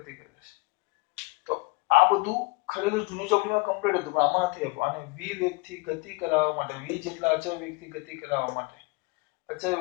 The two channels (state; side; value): quieter; right; 25.5 dB